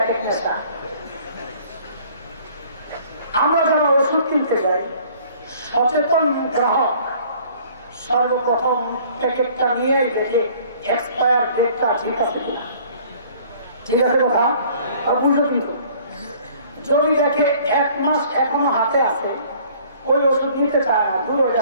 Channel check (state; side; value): inverted; both; correlation -0.54